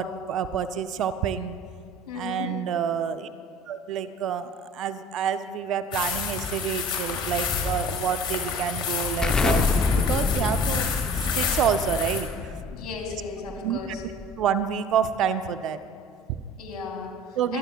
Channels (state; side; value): normal; both; correlation 0.45